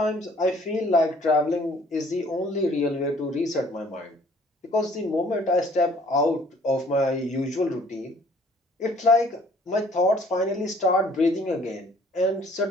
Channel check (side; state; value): both; normal; correlation 0.57